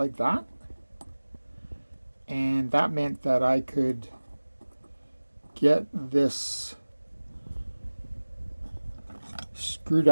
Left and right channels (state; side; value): inverted; both; correlation -1.00